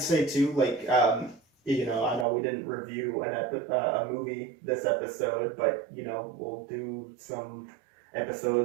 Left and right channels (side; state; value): left; drops out; at 2.2 s